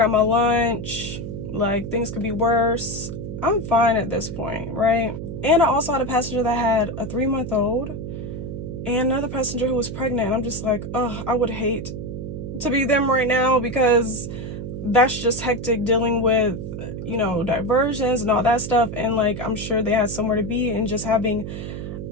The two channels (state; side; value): noise; right; hum, 7 dB below the sound